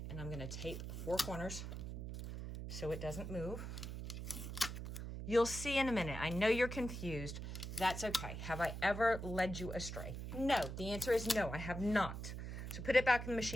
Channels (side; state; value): right; noise; hum, 6 dB below the sound